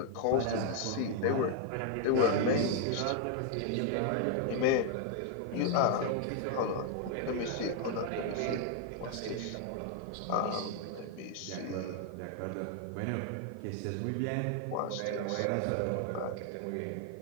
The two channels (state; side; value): different; both; correlation 0.00